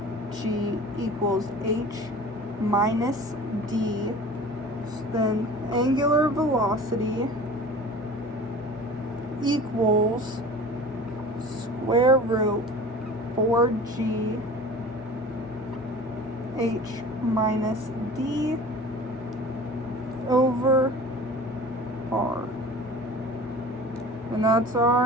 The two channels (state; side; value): normal; both; correlation 0.40